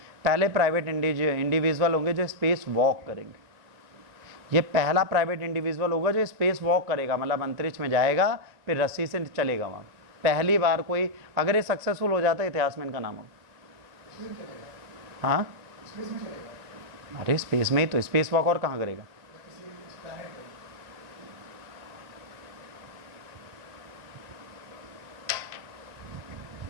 पहले प्राइवेट इंडिविजुअल होंगे जो स्पेस वॉक करेंगे। ये पहला प्राइवेट इंडिविजुअल होगा जो स्पेस वॉक करेगा, मतलब अंतरिक्ष में जाएगा फिर रस्सी से चलेगा वहाँ, पहली बार कोई, अगर ये सक्सेसफुल हो जाता है इतिहास में इनका नाम होगा। हाँ अरे स्पेस में ही तो, स्पेस वॉक और कहाँ करेगा।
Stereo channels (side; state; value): left; late; 1.9 ms